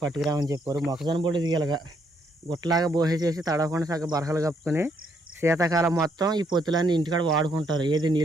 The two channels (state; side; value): normal; both; correlation 0.72